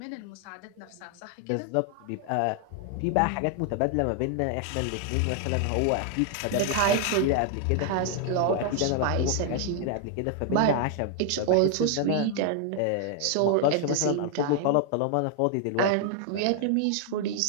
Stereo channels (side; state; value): both; different; correlation 0.00